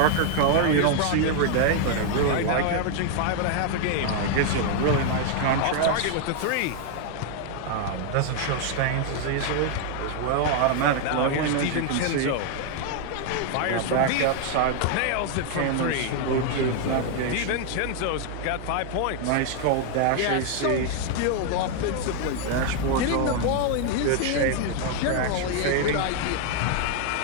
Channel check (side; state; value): both; different; correlation 0.00